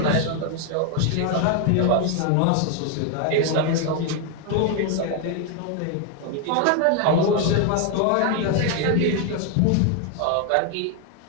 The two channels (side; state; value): both; different; correlation 0.01